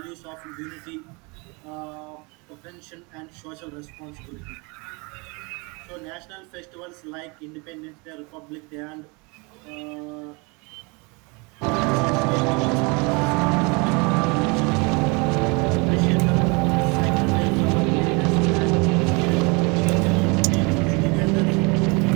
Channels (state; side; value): quieter; left; 29.1 dB